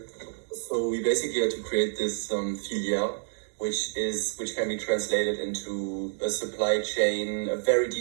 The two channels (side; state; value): left; silent; digital silence